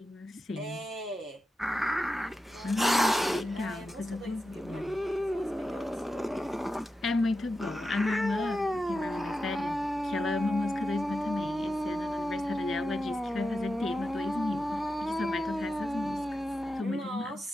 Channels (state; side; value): normal; both; correlation 0.90